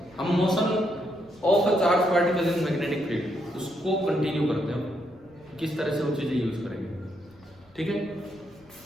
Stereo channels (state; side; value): noise; left; rumble, 29 dB below the sound